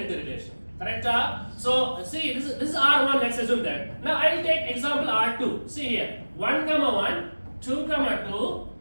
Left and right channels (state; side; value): inverted; both; correlation -1.00